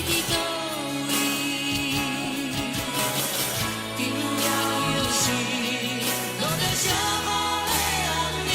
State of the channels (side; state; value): both; identical; correlation 1.00